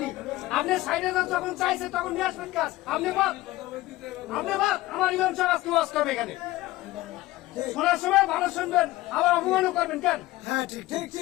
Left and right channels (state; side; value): quieter; right; 17.9 dB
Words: আপনি সাইডে যখন চাইছে তখন নিয়ে আসবেন কাজ। আপনি বাদ আমার ইমাম সাহেব আজকে ওয়াজ করবে এখানে, শোনার সময় ভালো শুনবেন, আবার অপমানও করবেন কেন? হ্যাঁ, ঠিক ঠিক